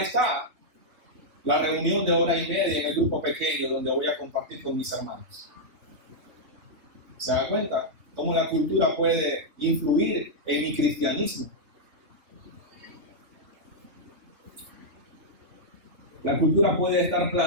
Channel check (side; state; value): left; late; 3.2 ms